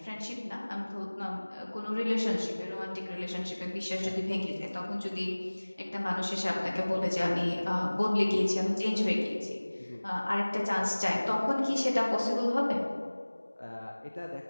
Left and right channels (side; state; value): both; inverted; correlation -1.00